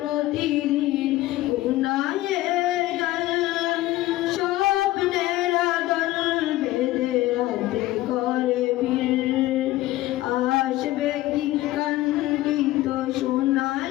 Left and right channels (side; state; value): right; quieter; 16.7 dB